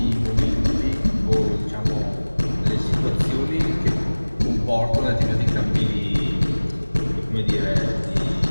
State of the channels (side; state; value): both; inverted; correlation -1.00